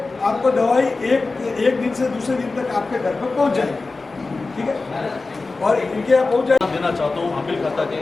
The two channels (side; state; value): right; quieter; 3.7 dB